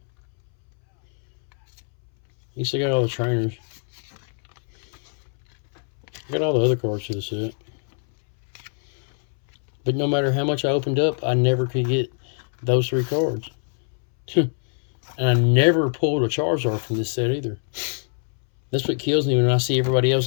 You still got all the trainers. I got all the other cards to the set. But no matter how much I opened up, I never could get those 3 cards. And I never pulled a Charizard from this set either. That's what kills me when I see everybody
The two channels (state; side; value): silent; right; 63 dB below the other